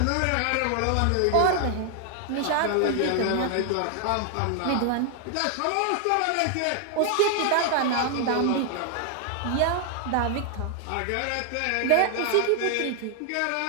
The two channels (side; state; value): both; different; correlation 0.00